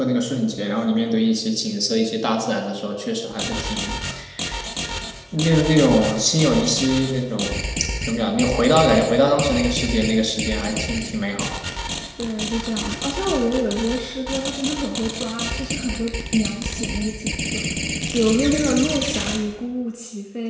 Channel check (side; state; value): both; identical; correlation 1.00